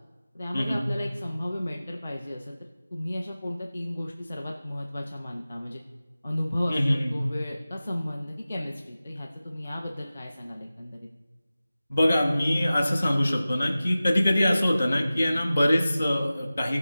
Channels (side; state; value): both; inverted; correlation -0.96